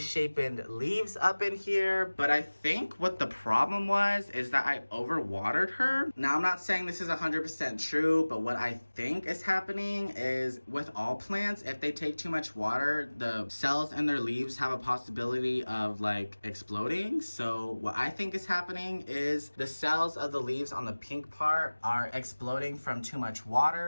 leaves up in here. But I think what the problem was is that I overwatered her. Now, I'm not saying this is 100% true, but what I think is happening is with all plants, if they take too much water, the cells in their leaves have a possibility of like exploding. So what I think is happening is the cells of the leaves on the pink part are exploding from too much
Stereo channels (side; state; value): both; inverted; correlation -1.00